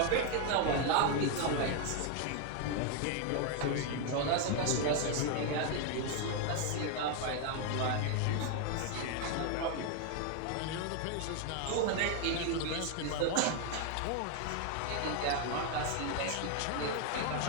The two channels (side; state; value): both; different; correlation 0.01